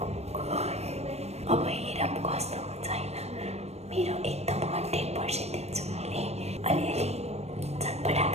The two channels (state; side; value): late; left; 0.31 ms